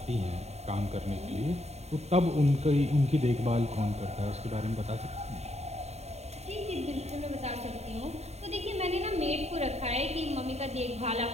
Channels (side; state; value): left; late; 0.31 ms